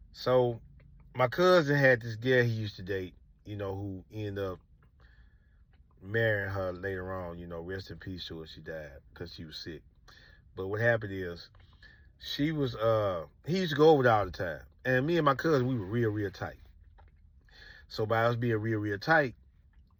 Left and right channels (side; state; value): both; identical; correlation 1.00